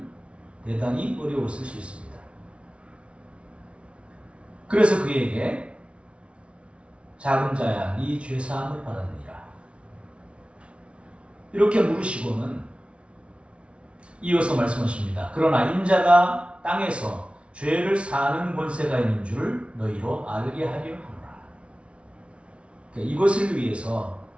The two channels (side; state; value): left; late; 0.060 ms